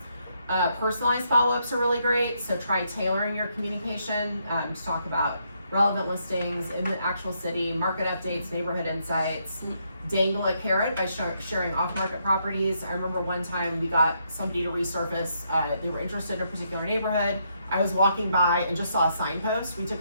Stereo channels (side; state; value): both; inverted; correlation -0.76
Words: Personalized follow-ups are really great. So try tailoring your communication to talk about relevant listings in the actual city, market updates, neighborhood insights. Dangle a carrot by sharing off-market properties. I remember one time we got somebody to resurface, they were interested in a particular neighborhood. I was walking by and just saw a signpost. We took